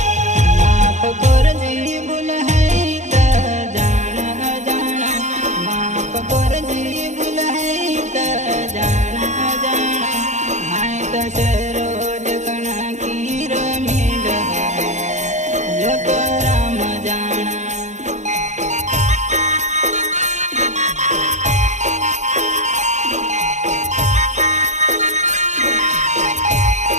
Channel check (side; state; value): left; late; 0.34 ms